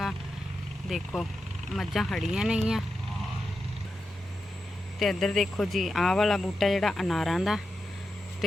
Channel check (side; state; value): both; normal; correlation 0.88